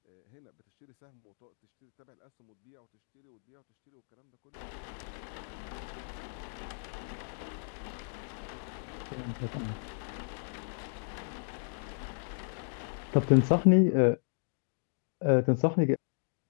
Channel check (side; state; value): right; silent; digital silence